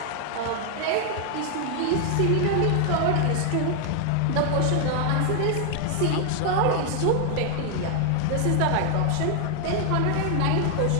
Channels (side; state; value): both; different; correlation 0.00